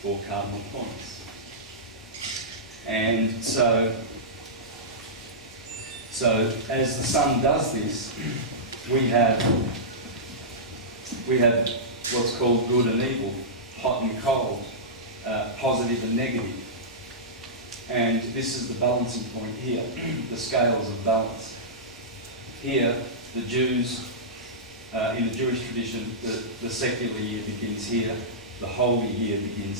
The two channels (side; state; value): both; normal; correlation -0.15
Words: 4 cardinal points. And so as the sun does this, we have what's called good and evil, hot and cold, positive and negative. And this is the balancing point here, the scales of balance. Here, the Jews, in the Jewish tradition, the secular year begins here, the holy year